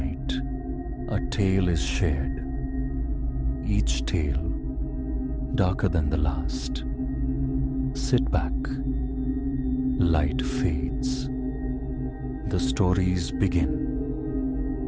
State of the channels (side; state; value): both; identical; correlation 1.00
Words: a tale is shared. Each tale darker than the last. Sit back. Light fades. The stories begin.